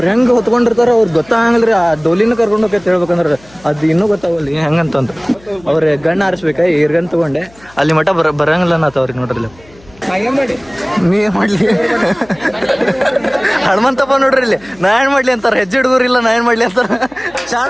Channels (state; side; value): noise; left; hum, 26 dB below the sound